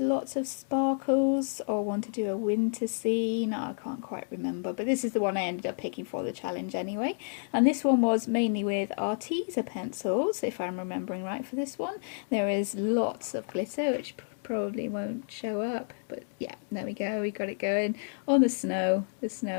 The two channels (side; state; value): right; silent; digital silence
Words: of sparkles or one to do a winter scene. I can't quite remember, but this is the one I ended up picking for the challenge anyway. And this one was mainly with Arteza pencils, if I'm remembering right for this one. There is lots of glitter, which probably won't show up, but yeah, there we go, we got it going on the snow. The